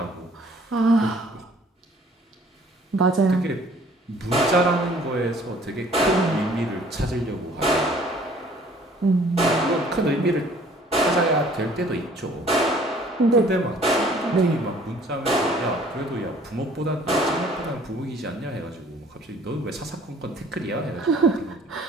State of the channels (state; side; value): normal; both; correlation 0.55